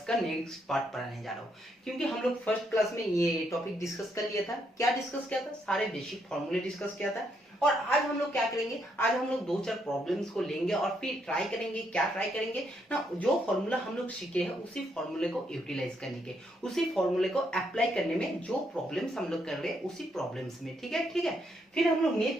का नेक्स्ट पार्ट पढ़ाने जा रहा हूं, क्योंकि हम लोग फर्स्ट क्लास में ये टॉपिक डिस्कस कर लिया था। क्या डिस्कस किया था? सारे बेसिक फॉर्मूले डिस्कस किया था। और आज हम लोग क्या करेंगे? आज हम लोग दो चार प्रॉब्लम्स को लेंगे और फिर ट्राई करेंगे। क्या ट्राई करेंगे ना, जो फॉर्मूला हम लोग सीखे हैं उसी फॉर्मूले को यूटिलाइज करने के, उसी फॉर्मूले को अप्लाई करने में जो प्रॉब्लम्स हम लोग कर रहे हैं उसी प्रॉब्लम्स में। ठीक है, ठीक है। फिर हम लोग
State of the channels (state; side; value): normal; both; correlation 0.76